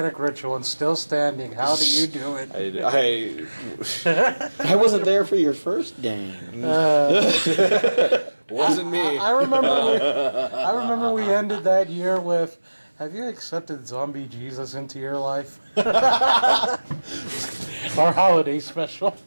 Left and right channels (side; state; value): both; inverted; correlation -1.00